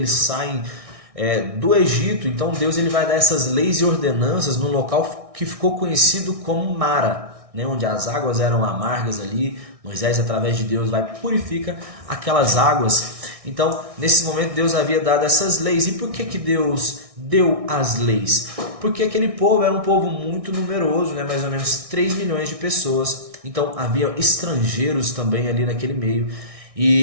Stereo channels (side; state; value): left; late; 1.6 ms